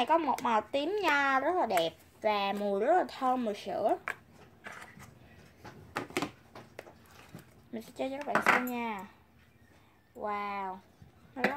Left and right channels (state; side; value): identical; both; correlation 1.00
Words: có một màu tím nho rất là đẹp và mùi rất là thơm mùi sữa. Mình sẽ chơi cho các bạn xem nha. Wow, nó